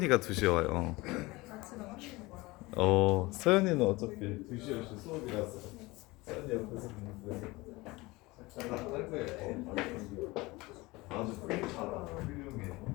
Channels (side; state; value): right; quieter; 22.0 dB